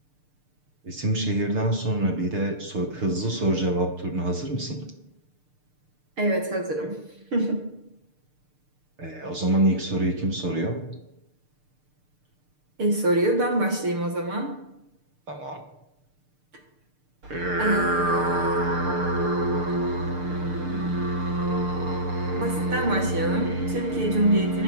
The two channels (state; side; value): late; left; 6.7 ms